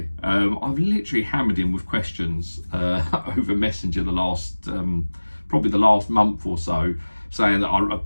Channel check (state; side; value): inverted; both; correlation -1.00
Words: I've literally hammered him with questions over Messenger probably the last month or so, saying that